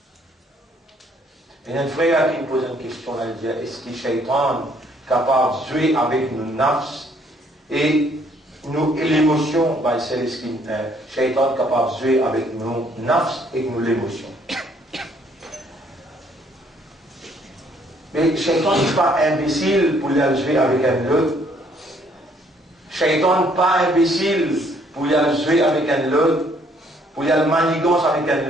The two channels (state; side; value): normal; both; correlation 0.65